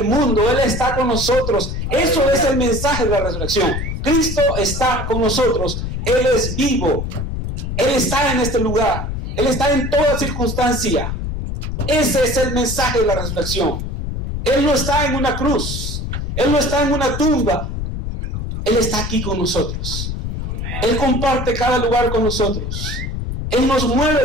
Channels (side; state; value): left; noise; rumble, 4 dB below the sound